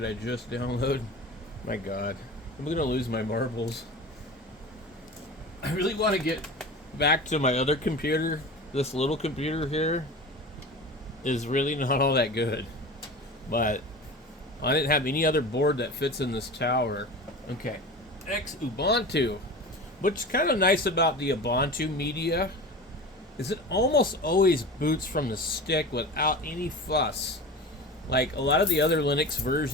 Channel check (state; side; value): normal; both; correlation 0.33